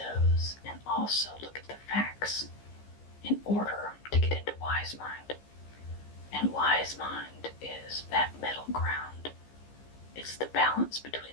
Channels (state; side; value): late; right; 15 ms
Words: and also look at the facts in order to get into wise mind. And wise mind is that middle ground. It's the balance between